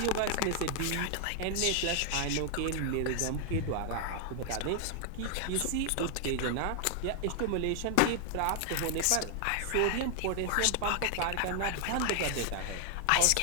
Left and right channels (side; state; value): both; different; correlation 0.00